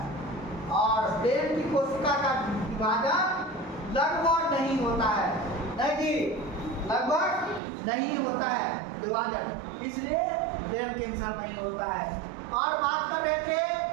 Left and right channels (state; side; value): drops out; left; at 7.6 s